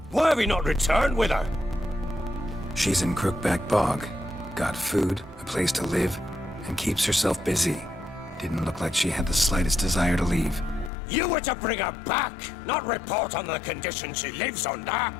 Why have you not returned with her? She's in Crookback Bog. Got food, a place to live, and keeps herself busy. Didn't look like she had the slightest desire to leave. You were to bring her back, not report on the conditions she lives under.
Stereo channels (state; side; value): drops out; right; at 10.9 s